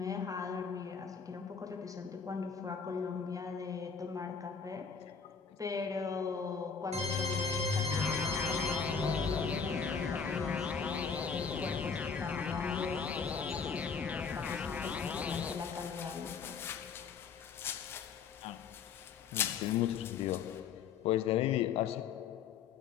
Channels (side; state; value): right; quieter; 6.0 dB